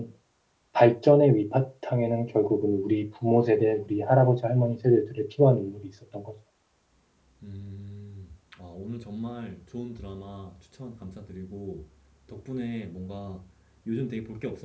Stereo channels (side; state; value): both; identical; correlation 1.00